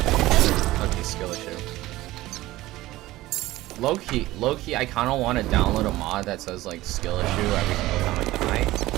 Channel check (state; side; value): quieter; left; 17.3 dB